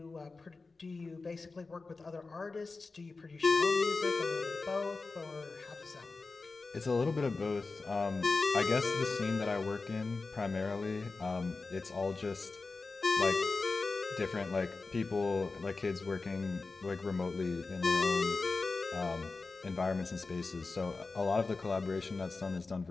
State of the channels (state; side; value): quieter; right; 3.9 dB